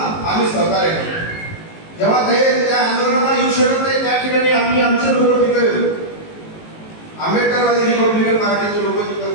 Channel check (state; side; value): late; right; 19 ms